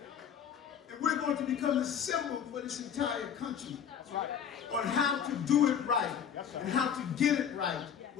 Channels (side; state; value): right; quieter; 8.2 dB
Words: And we're going to become the symbol for this entire country on how to do it right and how to get it right